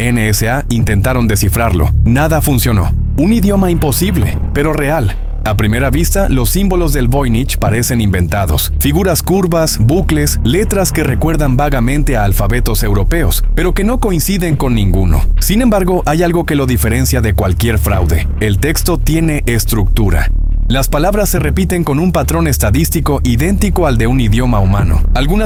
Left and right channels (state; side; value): identical; both; correlation 1.00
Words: intentaron descifrarlo. Nada funcionó. Un idioma imposible, pero real. A primera vista, los símbolos del Voynich parecen inventados. Figuras curvas, bucles, letras que recuerdan vagamente a alfabetos europeos, pero que no coinciden con ninguno. Sin embargo, hay algo que lo diferencia de cualquier fraude. El texto tiene estructura. Las palabras se repiten con un patrón estadístico idéntico al de un idioma humano.